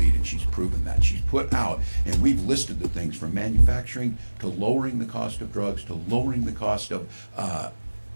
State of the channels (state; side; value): inverted; both; correlation -1.00